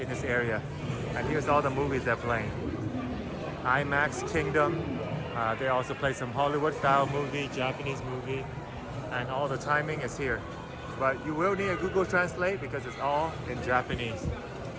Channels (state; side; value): identical; both; correlation 1.00